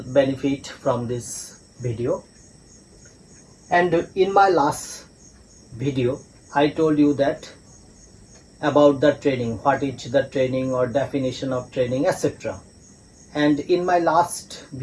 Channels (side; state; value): both; identical; correlation 1.00